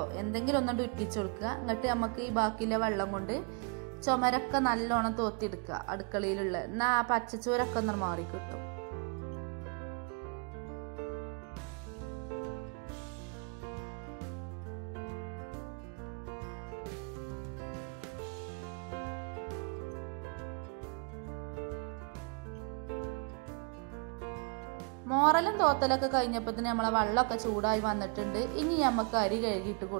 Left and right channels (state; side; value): quieter; left; 36.3 dB